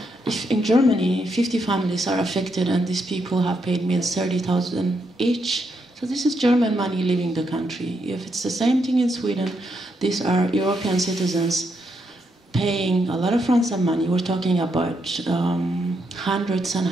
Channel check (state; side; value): normal; both; correlation 0.79